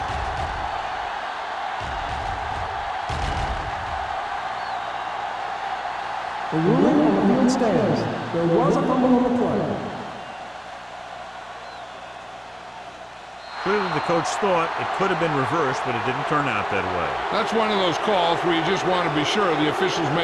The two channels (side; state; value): both; identical; correlation 1.00